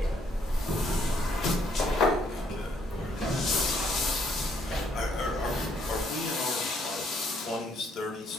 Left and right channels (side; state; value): both; normal; correlation 0.69